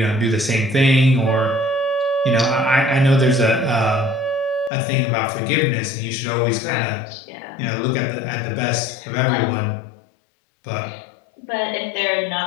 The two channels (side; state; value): right; drops out; at 4.7 s